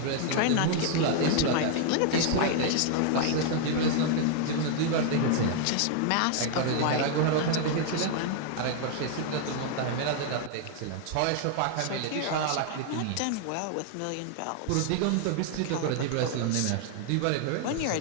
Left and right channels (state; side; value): different; both; correlation 0.00